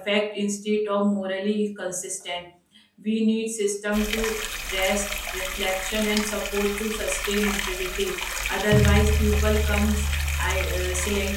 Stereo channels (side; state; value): both; identical; correlation 1.00